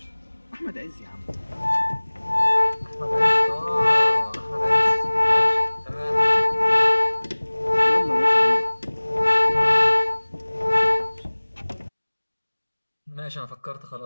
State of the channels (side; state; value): both; inverted; correlation -1.00